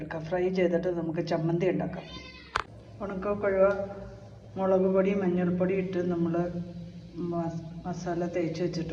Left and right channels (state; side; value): identical; both; correlation 1.00